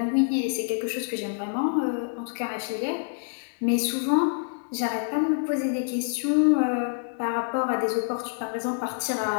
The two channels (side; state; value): right; silent; digital silence